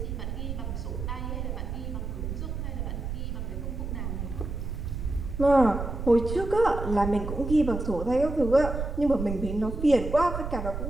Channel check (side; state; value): right; noise; rumble, 5 dB below the sound